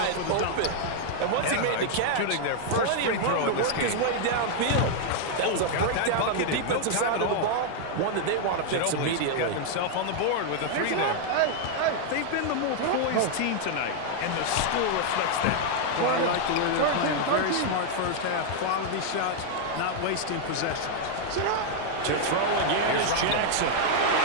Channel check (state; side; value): different; both; correlation 0.00